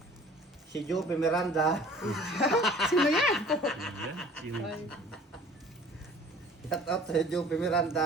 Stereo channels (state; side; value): normal; both; correlation 0.48